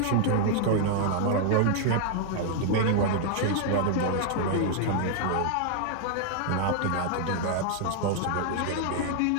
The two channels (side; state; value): both; different; correlation -0.01